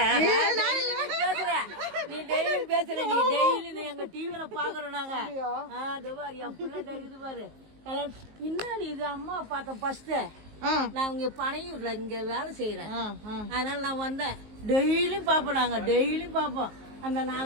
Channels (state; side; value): late; left; 19 ms